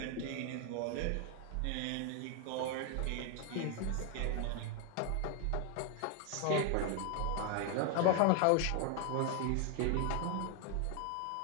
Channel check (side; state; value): both; different; correlation 0.00